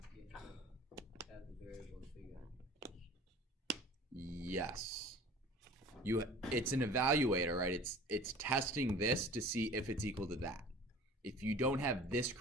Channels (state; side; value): normal; both; correlation 0.44